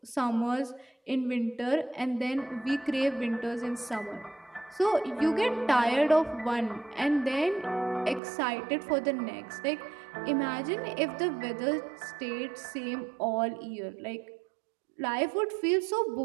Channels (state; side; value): drops out; left; at 8.2 s